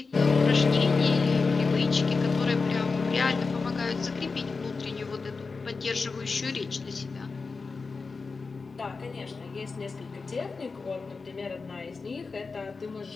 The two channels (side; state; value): right; quieter; 4.4 dB